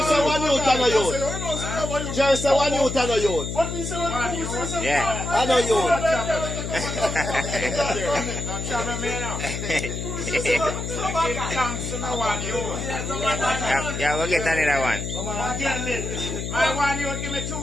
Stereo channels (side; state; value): left; noise; hum, 5 dB below the sound